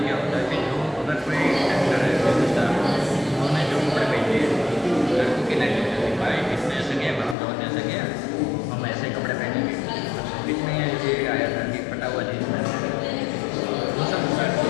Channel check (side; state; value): right; drops out; at 7.4 s